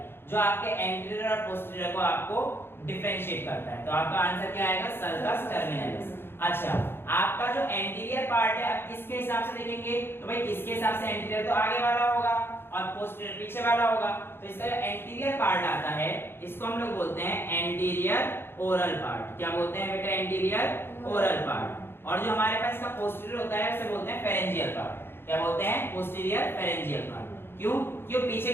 जो आपके एंटीरियर और पोस्टीरियर को आपको डिफरेंशिएट करता है। तो आपका आंसर क्या आएगा, सर्कस टर्मिनलिस। अच्छा, आपका जो एंटीरियर पार्ट है आप किसके हिसाब से देखेंगे तो भाई किसके हिसाब से, एंटीरियर तो आगे वाला होगा और पोस्टीरियर पीछे वाला होगा। तो इसका जो एंटीरियर पार्ट आता है इसको हम लोग बोलते हैं एंटीरियर ओरल पार्ट। क्या बोलते हैं बेटा, एंटीरियर ओरल पार्ट। और जो हमारे पास इसका पोस्टीरियर होता है उसे बोलते हैं फेरेंजियल पार्ट। क्या बोलते हैं, पोस्टीरियर फेरेंजियल पार्ट। क्यों, क्यों पीछे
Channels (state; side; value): late; right; 0.11 ms